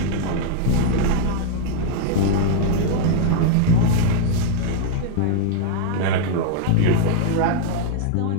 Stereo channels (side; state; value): both; different; correlation -0.01